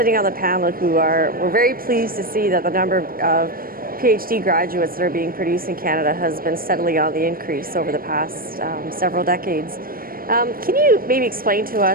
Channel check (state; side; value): late; left; 0.42 ms